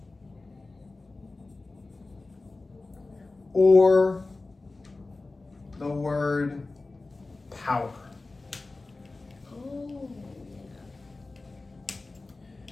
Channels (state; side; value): quieter; right; 3.4 dB